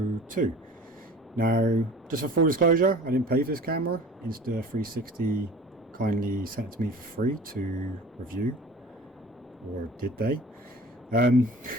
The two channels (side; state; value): both; normal; correlation 0.43